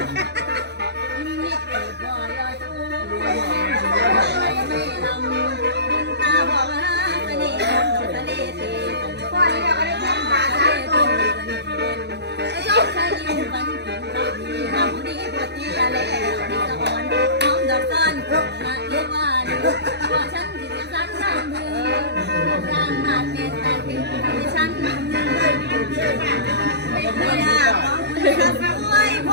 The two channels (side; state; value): left; late; 0.50 ms